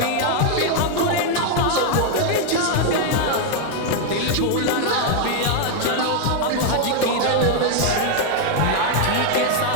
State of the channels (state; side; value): different; both; correlation 0.00